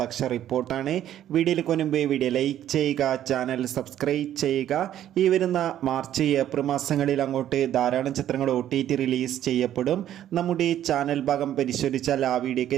റിപ്പോർട്ടാണ്. വീഡിയോയിലേക്ക് മുൻപ് വീഡിയോ ലൈക്ക് ചെയ്യുക, ചാനൽ സബ്സ്ക്രൈബ് ചെയ്യുക. ഈ വരുന്ന മാർച്ച് ഏപ്രിൽ മാസങ്ങളിൽ അങ്ങോട്ട് ധാരാളം ചിത്രങ്ങൾ OTT റിലീസ് ചെയ്യപ്പെടും. നമ്മുടെ ചാനൽ ഭാഗം പരിശോധിച്ചാൽ ആ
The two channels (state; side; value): quieter; left; 11.5 dB